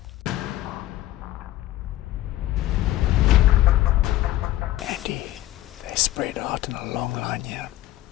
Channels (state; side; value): quieter; right; 15.1 dB